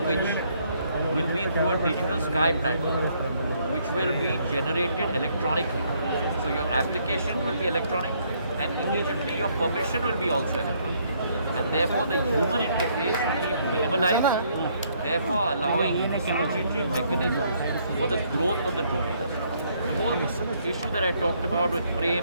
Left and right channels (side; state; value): both; inverted; correlation -0.69